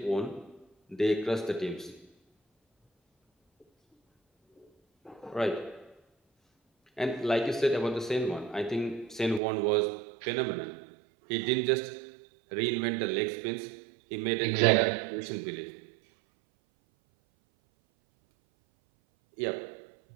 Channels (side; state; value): left; drops out; at 9.4 s